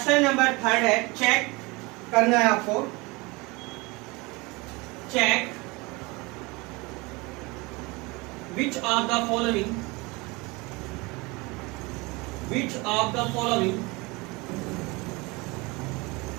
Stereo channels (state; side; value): quieter; left; 25.0 dB